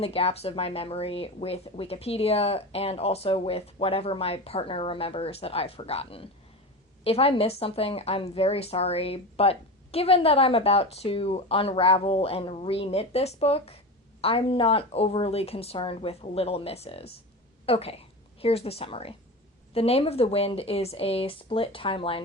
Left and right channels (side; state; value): both; normal; correlation 0.26